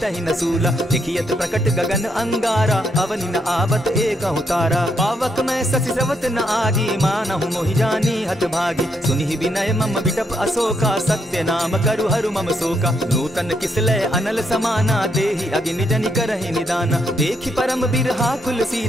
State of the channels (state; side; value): normal; both; correlation 0.76